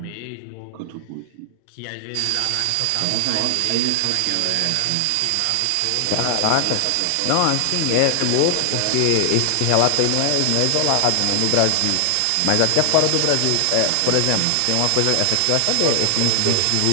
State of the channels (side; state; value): both; different; correlation 0.00